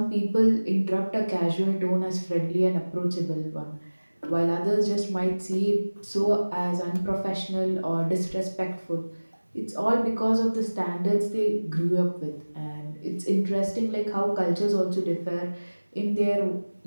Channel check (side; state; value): both; inverted; correlation -1.00